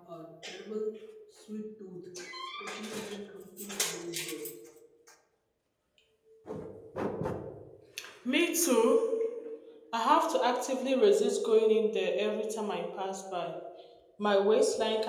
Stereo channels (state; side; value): identical; both; correlation 1.00